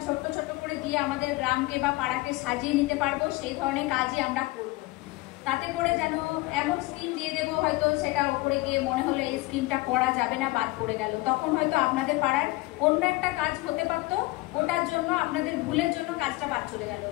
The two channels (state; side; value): quieter; right; 20.8 dB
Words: ছোট্ট ছোট্ট করে দিয়ে আমাদের গ্রামকে বা পাড়াকে সাজিয়ে নিতে পারবো, সেই ধরনের কাজই আমরা করব। তাতে করে যেন এমন স্কিম দিয়ে দেবো হয়তো সেটা উপরে গিয়ে মনে হলো এই স্কিমটা করা যাবে না, বাদ পড়ে গেল, তখন হয়তো আপনাদের পাড়ার অন্য একটা কাজ হতে পারতো, ওটার জন্য আপনাদের ভুলের জন্য কাজটা বাদ চলে গেল।